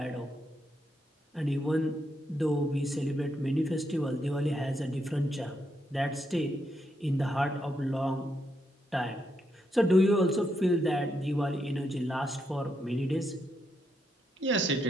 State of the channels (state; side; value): normal; both; correlation 0.80